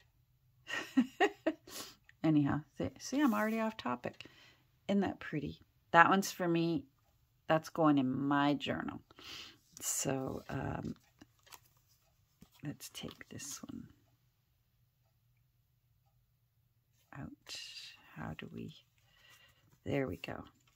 Anyhow, see, I'm already off topic. Isn't that pretty? That one's for me. That's going in my journal. So, let's take this one out. How do we... There we go.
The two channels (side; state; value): both; identical; correlation 1.00